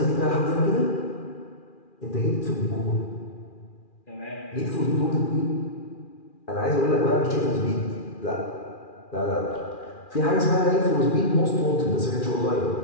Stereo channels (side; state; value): right; late; 2.4 ms